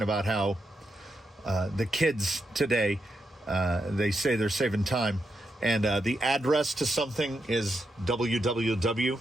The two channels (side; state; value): both; normal; correlation 0.84